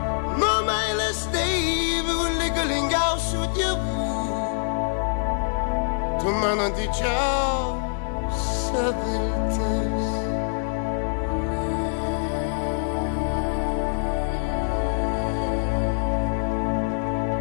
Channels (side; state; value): right; silent; digital silence